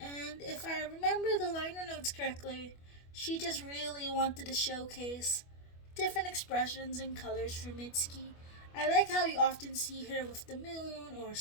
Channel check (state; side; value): late; right; 25 ms